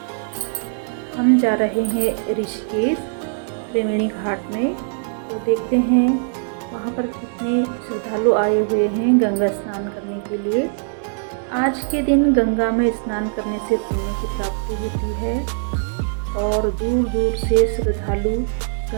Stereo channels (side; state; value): left; silent; digital silence